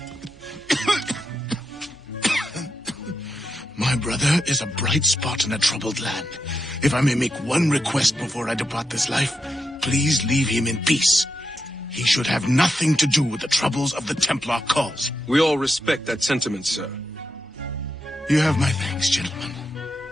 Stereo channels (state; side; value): normal; both; correlation 0.85